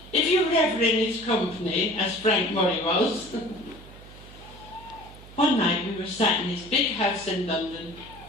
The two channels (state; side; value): noise; right; hum, 19 dB below the sound